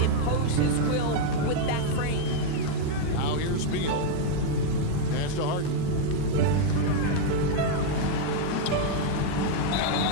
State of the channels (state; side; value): different; both; correlation 0.00